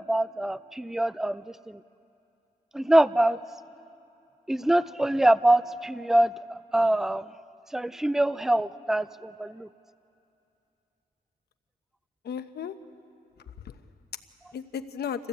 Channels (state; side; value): normal; both; correlation 0.96